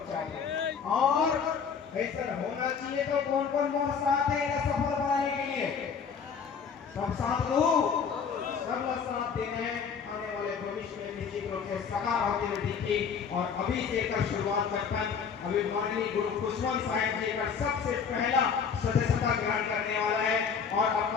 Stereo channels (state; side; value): quieter; right; 6.4 dB